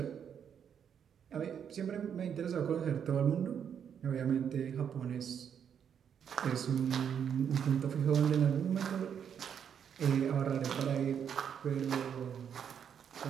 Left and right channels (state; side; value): quieter; left; 8.1 dB